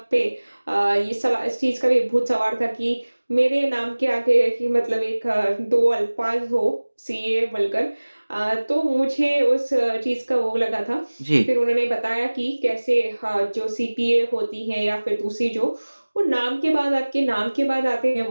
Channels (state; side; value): inverted; both; correlation -1.00